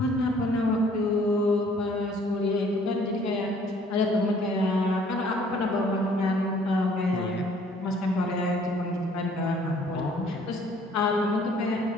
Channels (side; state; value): both; normal; correlation 0.58